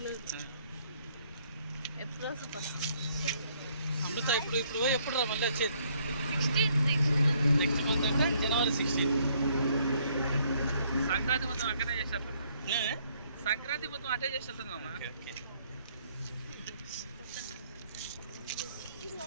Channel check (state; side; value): inverted; both; correlation -0.66